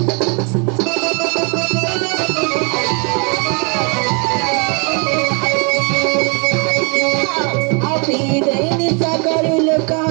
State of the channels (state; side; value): quieter; left; 35.2 dB